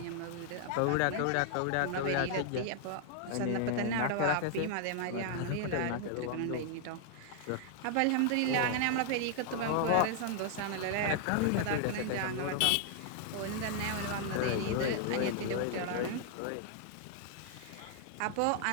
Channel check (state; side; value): different; both; correlation 0.00